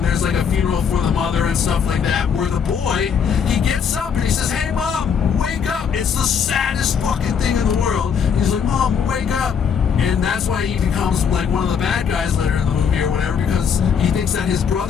there's like a funeral for the mother and stuff like that, where the boy, he gets up and he says, hey mom, wake up, it's the saddest fucking thing in the world. He's like, mom, wake up. And that's why he becomes like one of the bad guys later in the movie or whatever, because he thinks that his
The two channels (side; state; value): right; quieter; 7.0 dB